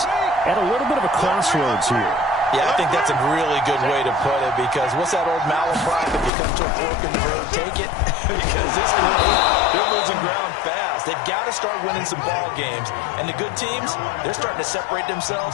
at a little bit of a crossroads here. Yeah, I think that's a really good way to put it because what's that old malaprop? If you come to a fork in the road, take it. Because this team, they're losing ground fast. They've got to start winning some ball games. And the good teams, they're starting to separate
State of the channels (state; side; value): drops out; right; at 6.3 s